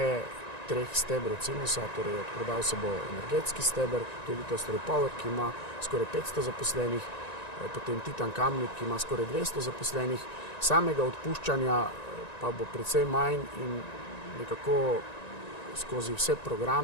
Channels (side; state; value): right; late; 1.9 ms